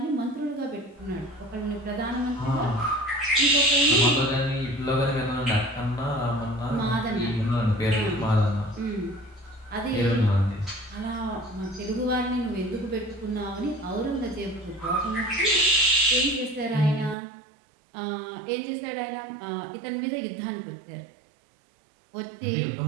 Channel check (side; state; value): left; drops out; at 17.2 s